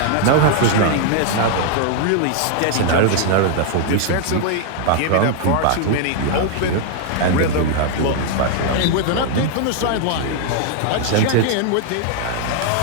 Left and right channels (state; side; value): different; both; correlation 0.00